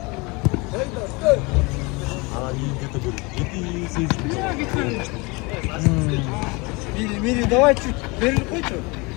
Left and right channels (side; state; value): right; quieter; 26.7 dB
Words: Мири, давай чуть вперед хочешь?